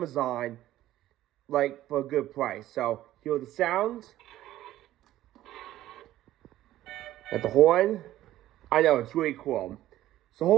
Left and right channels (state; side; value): quieter; left; 14.2 dB